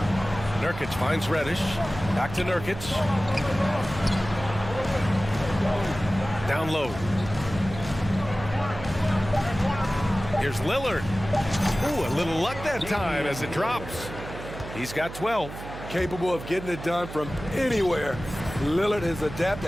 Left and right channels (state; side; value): noise; right; hum, 11 dB below the sound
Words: Nurkic finds Reddish. Back to Nurkic. Down low. Here's Lillard. Ooh, a little luck that time as it drops. He's got 12. Capable of getting it done from anywhere. Lillard is adept